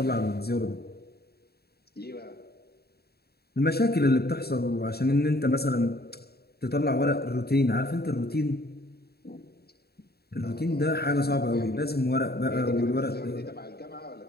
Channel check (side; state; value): right; late; 0.46 ms